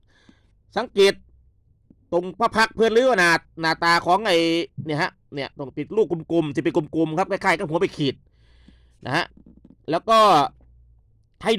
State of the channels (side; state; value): both; identical; correlation 1.00